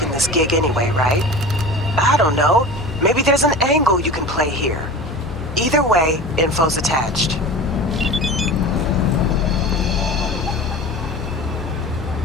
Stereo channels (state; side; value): normal; both; correlation 0.35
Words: this gig anyway, right? I don't know. Maybe there's an angle you can play here. Either way, info's attached.